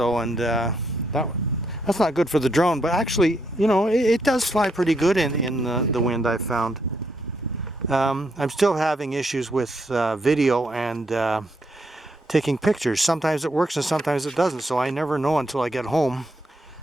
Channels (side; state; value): both; normal; correlation 0.77